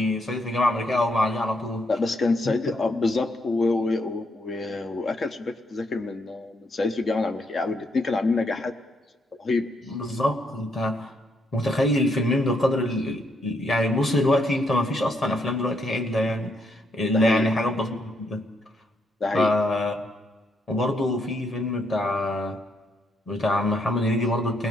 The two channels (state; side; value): normal; both; correlation 0.76